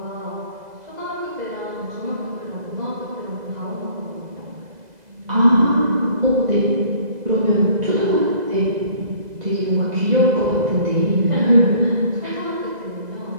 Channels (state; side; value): late; left; 2.0 ms